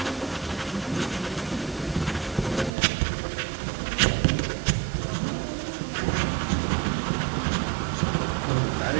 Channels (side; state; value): left; drops out; at 2.7 s